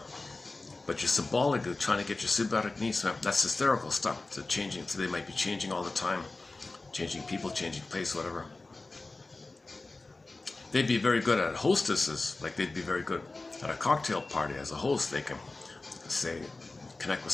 But you're symbolically trying to get your symbiotic needs met. That's hysterical stuff. So changing, so they might be changing all the time, changing people, changing place, whatever. They'd be very good at hostesses, like they'd be very good at a cocktail party as a host. They can say, connect with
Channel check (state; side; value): quieter; right; 3.3 dB